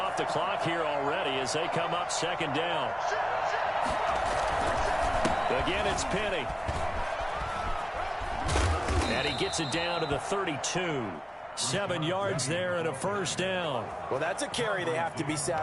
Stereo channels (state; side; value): identical; both; correlation 1.00